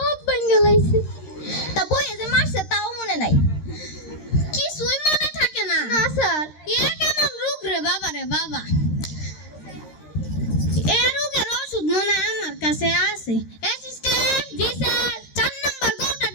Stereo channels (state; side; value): late; right; 13 ms